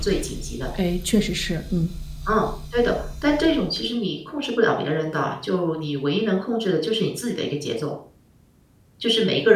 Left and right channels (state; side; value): identical; both; correlation 1.00